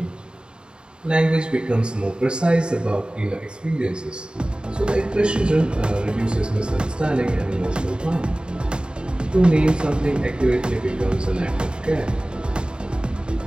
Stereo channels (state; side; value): late; left; 0.050 ms